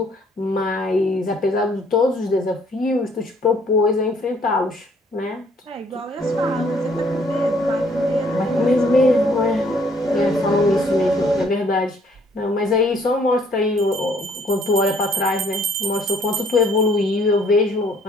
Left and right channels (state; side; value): normal; both; correlation 0.63